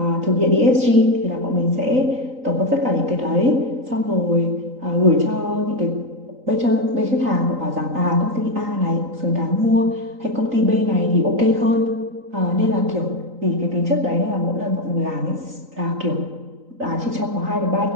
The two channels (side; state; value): left; late; 3.9 ms